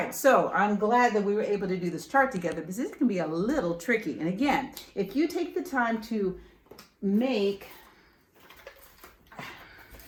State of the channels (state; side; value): identical; both; correlation 1.00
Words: so I'm glad that we were able to do this chart together because this can be a little tricky. And again, if you take the time to make